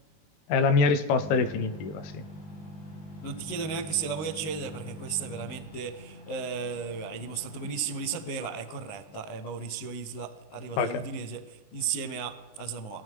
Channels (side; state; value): right; late; 19 ms